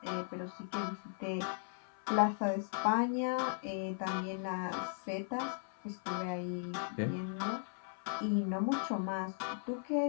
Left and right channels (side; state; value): right; silent; 53 dB below the other